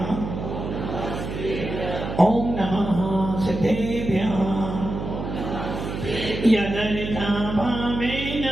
ओम नमः सिद्धेभ्यः यदरिता भावेन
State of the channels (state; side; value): noise; right; hum, 6 dB below the sound